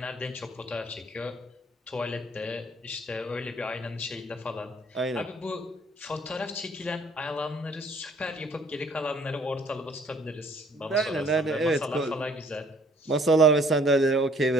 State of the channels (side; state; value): both; normal; correlation 0.59